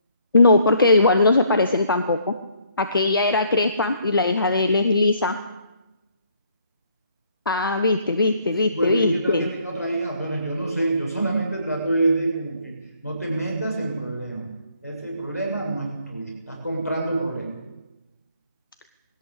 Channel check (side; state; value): both; inverted; correlation -0.66